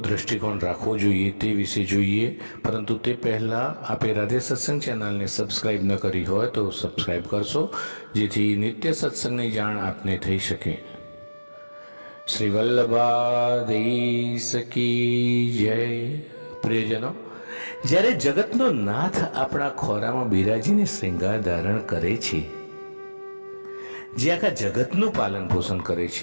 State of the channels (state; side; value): inverted; both; correlation -1.00